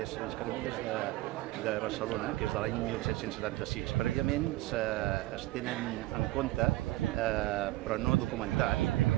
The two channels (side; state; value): left; quieter; 18.1 dB